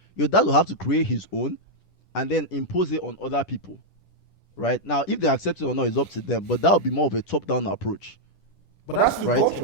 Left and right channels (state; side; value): late; right; 10 ms